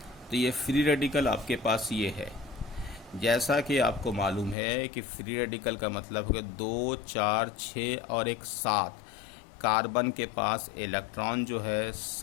तो ये फ्री रेडिकल आपके पास ये है। जैसा कि आपको मालूम है कि फ्री रेडिकल का मतलब है 2, 4, 6 और एक 7। कार्बन के पास इलेक्ट्रॉन जो है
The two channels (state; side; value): drops out; right; at 4.5 s